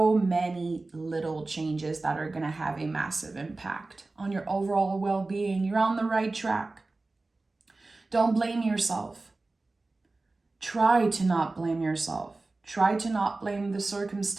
many little changes that are going to have a massive impact on your overall well-being. You're on the right track. Don't blame yourself. Try to not blame yourself. Try to not blame the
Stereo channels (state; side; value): quieter; left; 3.3 dB